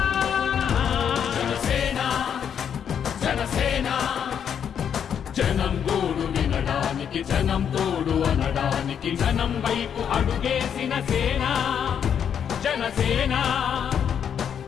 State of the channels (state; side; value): quieter; right; 8.2 dB